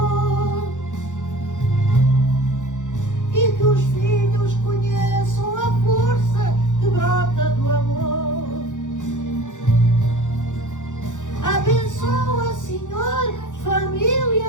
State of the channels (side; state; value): right; late; 0.86 ms